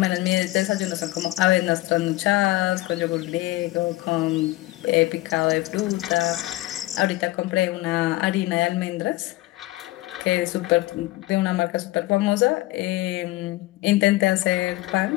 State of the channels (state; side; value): quieter; right; 18.5 dB